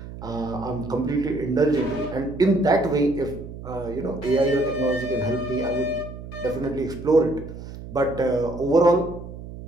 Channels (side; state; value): right; noise; hum, 12 dB below the sound